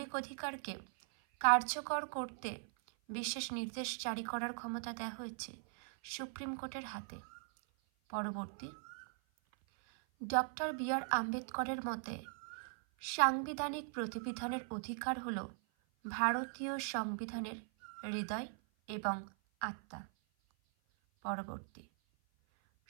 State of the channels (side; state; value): left; silent; 51 dB below the other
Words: অধিকারকে কার্যকর করতে বিশেষ নির্দেশ জারি করার ক্ষমতা দেওয়া হয়েছে সুপ্রিম কোর্টের হাতে। পরবর্তী, ডক্টর বি.আর. আম্বেদকরের মতে সাংবিধানিক প্রতিবিধানের অধিকার হল ভারতীয় সংবিধানের হৃদয় এবং আত্মা। পরবর্তী,